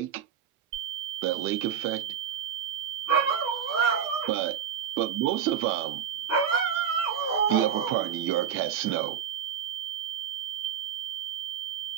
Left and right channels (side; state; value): left; quieter; 8.4 dB